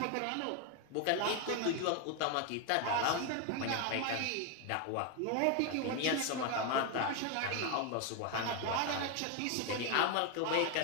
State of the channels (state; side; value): different; both; correlation 0.01